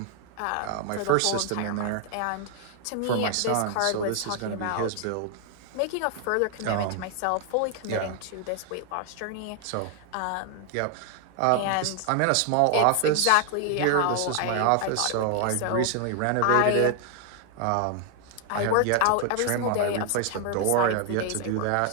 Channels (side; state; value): both; different; correlation 0.00